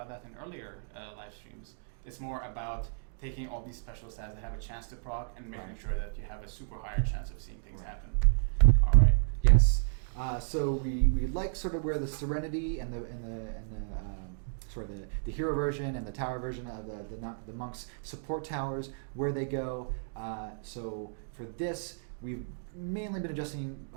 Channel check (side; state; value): left; silent; digital silence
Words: that in earlier live streams. It's more about taking all these special stats that have a chance to proc and making sure that you have a super higher chance of seeing things happen. All right. Yes. So we like sort of where the Serenity and the sort of the hero version and the tower version of the monks support towers, where they go. So for this, we've mainly been